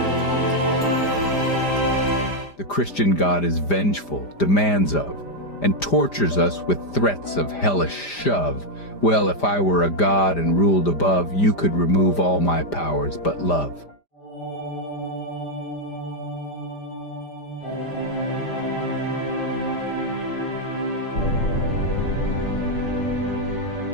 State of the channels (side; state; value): right; late; 5.0 ms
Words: The Christian God is vengeful, demands of, and tortures us with threats of hellish shove. Well, if I were a god and ruled above, you could remove all my powers but love.